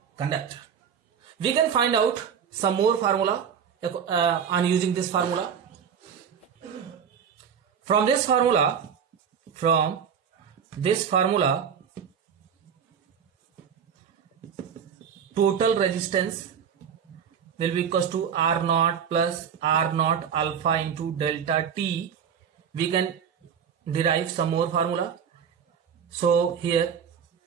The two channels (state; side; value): quieter; left; 7.6 dB